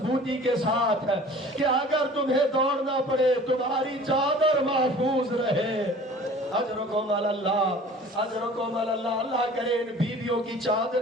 کے ساتھ کہ اگر تمہیں دوڑنا پڑے تمہاری چادر محفوظ رہے۔ اجرکم اللہ، اجرکم اللہ، اللہ کرے ان بیویوں کی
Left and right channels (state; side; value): normal; both; correlation 0.46